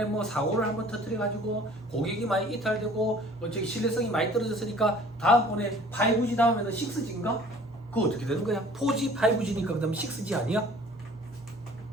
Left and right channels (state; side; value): normal; both; correlation 0.50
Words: 뭐 사고를 한번 터뜨려 가지고 고객이 많이 이탈되고 저기 신뢰성이 많이 떨어졌으니까 다음번에 5G 다음에는 6G인가? 그거 어떻게 되는 거야? 4G, 5G니까 그 다음에 6G 아니야?